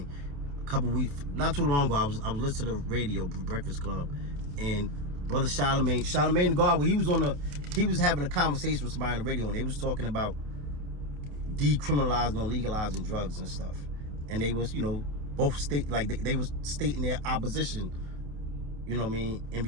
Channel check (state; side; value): late; left; 28 ms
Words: couple weeks, not too long ago, I was listening to the radio, Breakfast Club, and Brother Charlemagne the God, he was having a conversation with somebody on the radio, and they was talking about decriminalizing or legalizing drugs and stuff. And they was, both state, like they was stating their opposition, in